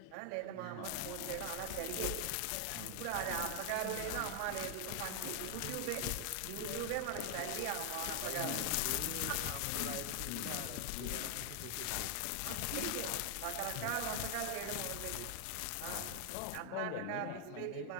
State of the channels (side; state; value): both; different; correlation 0.00